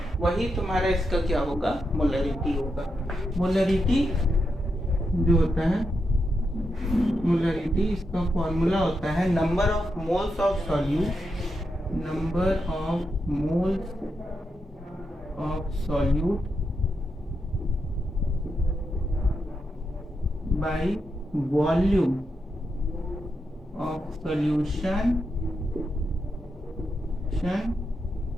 वही तुम्हारा इसका क्या होगा, मोलरिटी होगा। मोलरिटी जो होता है, मोलरिटी इसका फॉर्मूला होता है number of moles of solute bye volume of solution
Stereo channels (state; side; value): normal; both; correlation 0.84